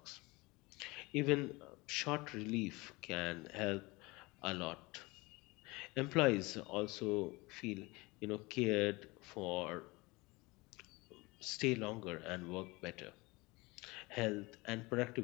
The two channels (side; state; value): right; quieter; 23.8 dB